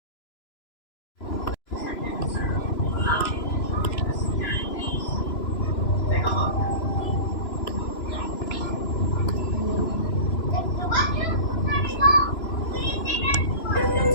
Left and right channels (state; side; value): late; right; 3.0 ms